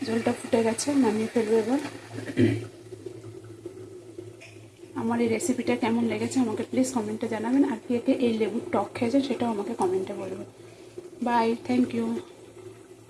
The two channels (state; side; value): identical; both; correlation 1.00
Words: ঝোলটা ফুটে গেছে, নামিয়ে ফেলবো এবার। আমার এই রেসিপিটা কেমন লেগেছে আমাকে প্লিজ কমেন্টে জানাবেন। আর কে কে এই লেবুর টক খেয়েছেন সেটাও আমাকে কমেন্টে বলবেন। Bye, thank you.